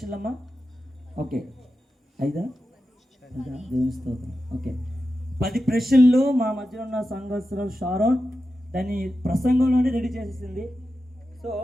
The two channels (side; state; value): both; normal; correlation 0.91